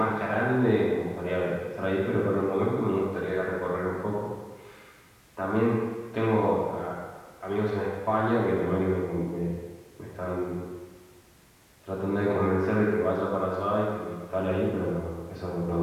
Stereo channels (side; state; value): both; identical; correlation 1.00